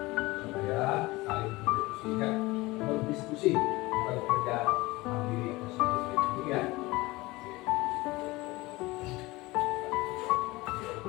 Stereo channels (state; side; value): quieter; right; 21.1 dB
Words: supaya saling berdiskusi, bukan kerja mandiri atau sendiri ya.